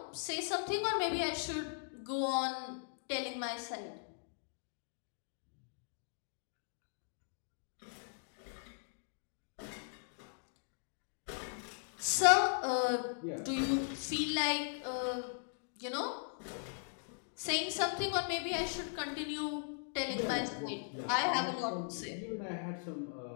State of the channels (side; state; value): right; silent; digital silence